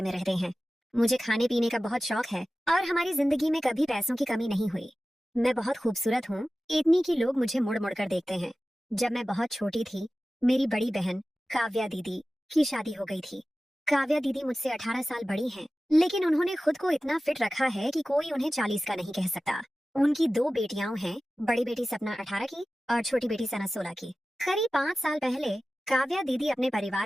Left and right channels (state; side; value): normal; both; correlation 0.95